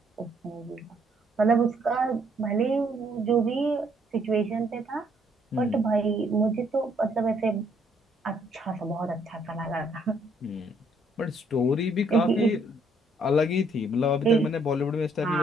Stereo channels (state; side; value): normal; both; correlation 0.68